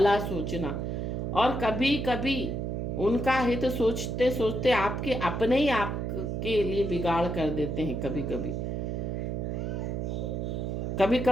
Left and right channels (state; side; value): noise; right; hum, 2 dB below the sound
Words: सोचना, और कभी कभी उनका हित सोचते सोचते आपके अपने ही आपके लिए बिगाड़ कर देते हैं। कभी कभी कभी